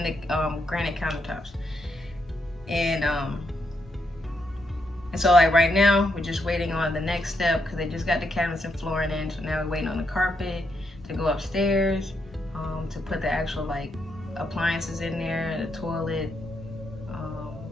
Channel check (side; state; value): both; normal; correlation 0.79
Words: the granite countertops. And so like right now we're just waiting on the next step because they just got the cabinets and flooring in. So now we're waiting on the carpet to go upstairs, to put the actual like appliances in there, the toilet,